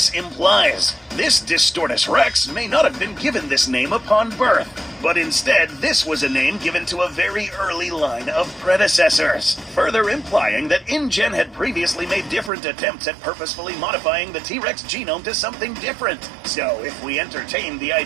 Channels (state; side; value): drops out; left; at 12.5 s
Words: implies. This Distortus Rex may not have been given this name upon birth, but instead this was a name given to a very early line of predecessors, further implying that InGen had previously made different attempts at purposefully modifying the T-Rex genome to something different. So if we entertain the